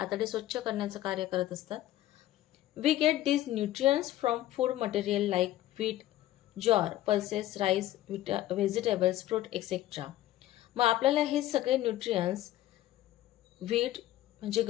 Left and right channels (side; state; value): right; quieter; 14.3 dB